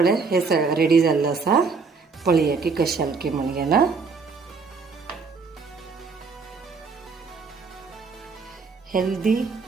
हे रेडी जाल्लें आसा. पळया की कशें जालें की म्हणून ना. हेल्दी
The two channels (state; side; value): quieter; left; 4.8 dB